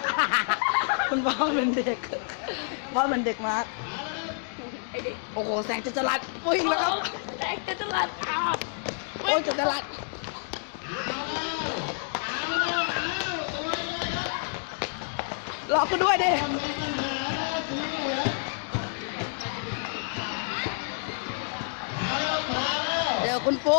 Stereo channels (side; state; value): right; silent; digital silence